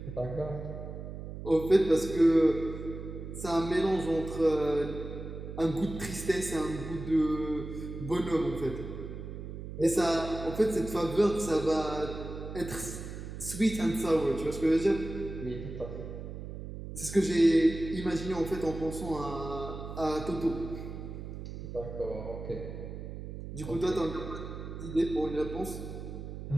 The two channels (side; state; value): right; noise; hum, 9 dB below the sound